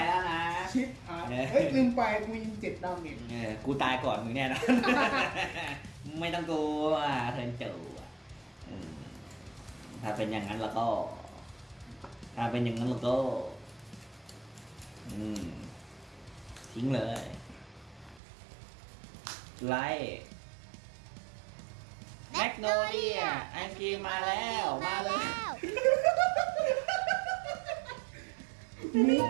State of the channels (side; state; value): left; drops out; at 18.2 s